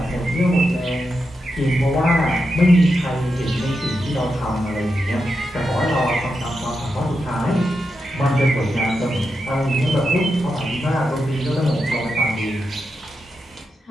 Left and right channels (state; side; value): normal; both; correlation 0.87